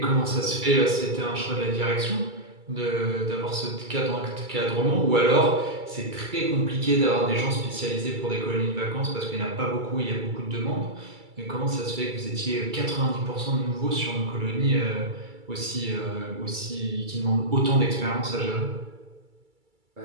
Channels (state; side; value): late; left; 2.3 ms